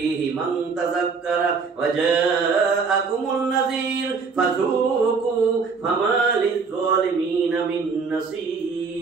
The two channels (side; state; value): left; quieter; 5.0 dB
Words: মান তাযাক্কারা ওয়া জাআকুমুন নাযীর ফাযুকু ফামা লিয-যালিমিনা মিন